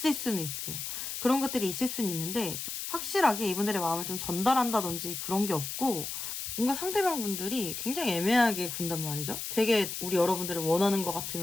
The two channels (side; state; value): left; noise; hiss, 5 dB below the sound